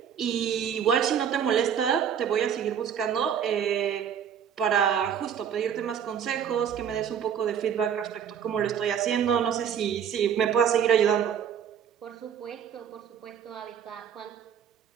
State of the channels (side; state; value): left; quieter; 8.4 dB